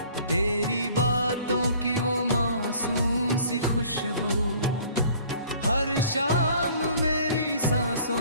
तेरी बातों की वो मासूम सी खुशबू हर शाम मेरी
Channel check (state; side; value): inverted; both; correlation -0.53